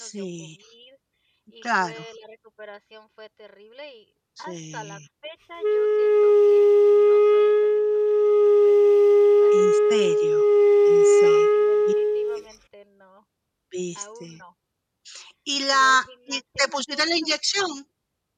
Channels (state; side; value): identical; both; correlation 1.00